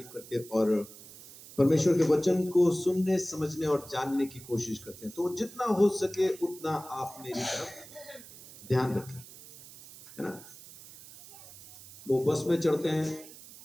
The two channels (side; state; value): right; noise; hiss, 18 dB below the sound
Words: करते और परमेश्वर के वचन को सुनने, समझने और जानने की कोशिश करते हैं। तो जितना हो सके उतना आप मेरी तरफ ध्यान रखें, है ना। वो बस में चढ़ते हैं,